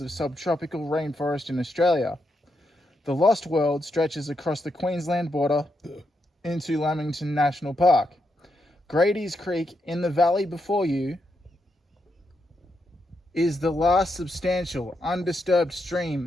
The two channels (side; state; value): both; normal; correlation 0.82